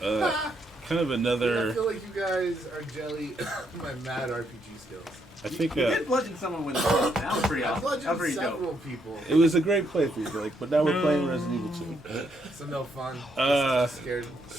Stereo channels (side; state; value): both; normal; correlation 0.75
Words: kind of I another. feel like you guys are jelly my mad RPG skills. I think You did bludgeon someone with a stick. That was pretty I awesome. That was bludgeoned pretty several dope. people. it was a great playthrough, Blake. But now we're playing Resident Evil 2. So no fun. Uh, Scared.